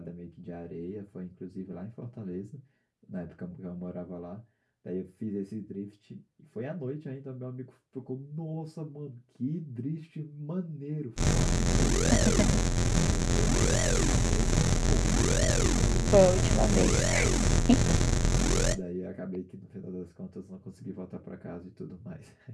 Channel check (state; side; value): identical; both; correlation 1.00